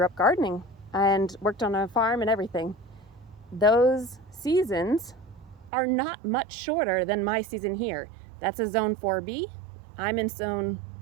gardening and worked on a farm and everything. Those seasons are not much shorter than my season here. That's a zone 4B. I'm in zone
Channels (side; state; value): left; drops out; at 5.7 s